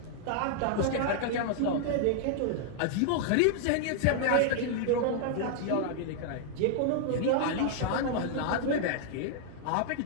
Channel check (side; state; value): both; different; correlation -0.01